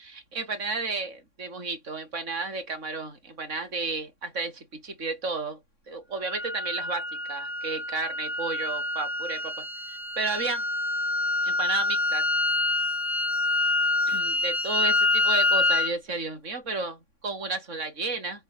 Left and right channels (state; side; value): late; left; 3.6 ms